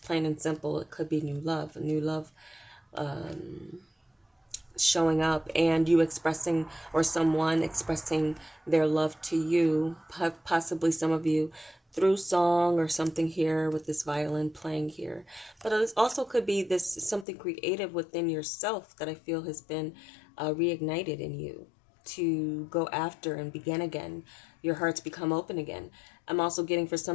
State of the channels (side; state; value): right; drops out; at 17.2 s